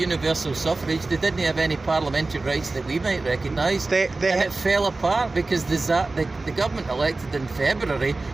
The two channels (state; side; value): quieter; left; 3.4 dB